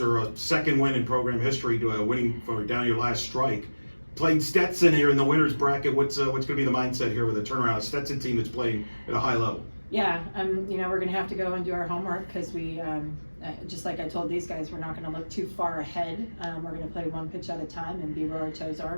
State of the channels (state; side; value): inverted; both; correlation -1.00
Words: a second win in program history, winning for down your last strike. Played Stetson here in the winner's bracket. What's going to be the mindset here with a turnaround? A Stetson team that's playing at a high level. Yeah, you know, we're going to have to go and do our homework because we, just like I told these guys, we're not going to look too far ahead. We're going to play one pitch at a time and be where our toes